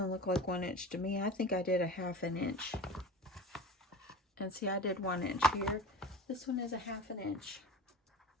look like 1 inch to me. I think I did a 1/2 inch. And see, I did 1 inch here. This one is a 1/2 inch.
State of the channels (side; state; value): both; normal; correlation 0.35